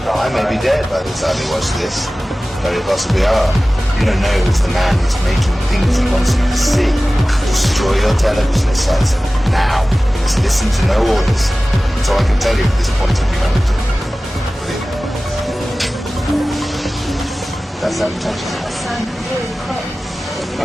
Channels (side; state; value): both; normal; correlation 0.97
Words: I may be dead by the time you watch this. Very possibly are. You don't know who's the man who's making things he wants you to see. Destroy your television sets now. Just listen to no orders. That's all I can tell you at this point of humanity. That's that potential.